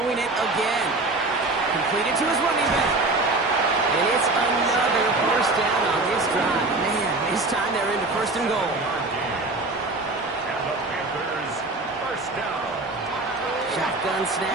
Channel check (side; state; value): left; quieter; 3.1 dB